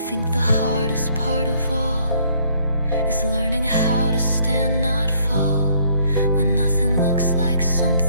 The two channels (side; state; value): both; inverted; correlation -0.65